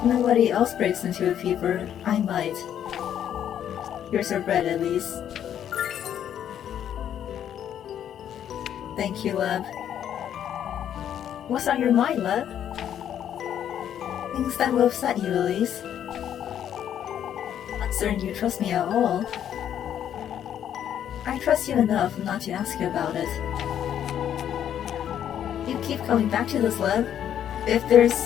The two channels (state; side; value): quieter; right; 9.9 dB